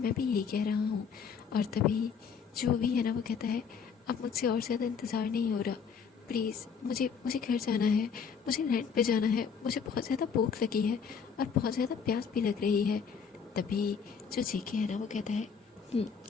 भी यही कह रहा हूँ। और तभी जो भी है ना वो कहता है अब मुझसे और ज़्यादा इंतज़ार नहीं हो रहा, प्लीज़ मुझे घर जाना है, मुझे लैंड पे जाना है, मुझे बहुत ज़्यादा भूख लगी है और बहुत ज़्यादा प्यास भी लग रही है। तभी जो जेके है ना वो कहता है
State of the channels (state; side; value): quieter; right; 6.4 dB